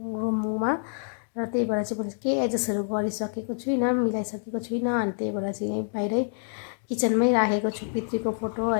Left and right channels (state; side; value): silent; right; digital silence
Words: रुममा। र त्यही भएर चाहिँ मैले केही एडजस्टहरू गरिसकेको छुइनँ, मिलाइसकेको छुइनँ। अनि त्यही भएर चाहिँ यहीँ बाहिरै किचनमै राखेको छु पितृको फोटो